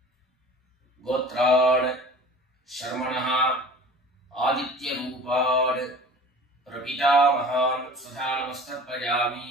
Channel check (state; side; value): normal; both; correlation 0.43